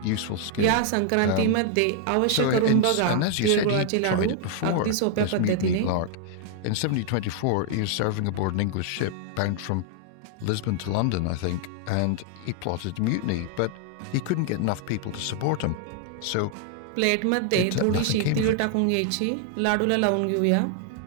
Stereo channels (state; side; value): different; both; correlation 0.00